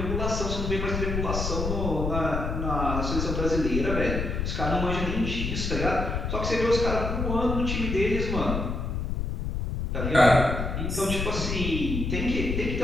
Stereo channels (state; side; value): noise; left; rumble, 2 dB below the sound